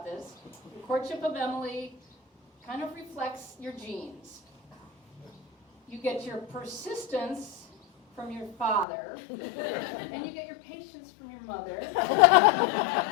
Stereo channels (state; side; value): drops out; right; at 8.8 s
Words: this, your courtship of Emily kind of reflects your genes. You get your persistence from your father, and you get your patience from your mother,